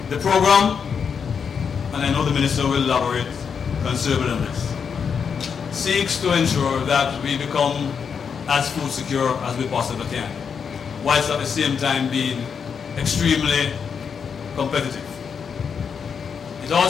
The program, and I know the minister will elaborate considerably on this, seeks to ensure that we become as food secure as we possibly can, whilst at the same time being extremely competitive. It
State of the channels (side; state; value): right; quieter; 6.6 dB